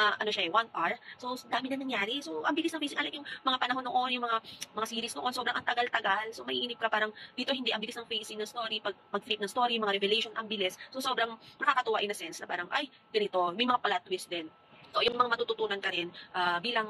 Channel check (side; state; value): both; identical; correlation 1.00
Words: 1 hour, so dami na nangyari. So, ang bilis ng facing, yung mga panahon noon, yung mga series noon, sobrang ang tagal-tagal. So, maiinip ka parang dito hindi, ang bilis ng facing ng story, pag-flip ng story, mga revelation, ang bilis. So, sobrang nakakatuwa in a sense na parang, ay, ganito, may mga plot twist din. So, yung mga matututunan ka rin